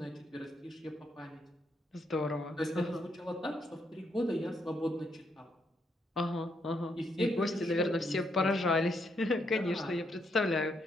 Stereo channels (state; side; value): normal; both; correlation 0.76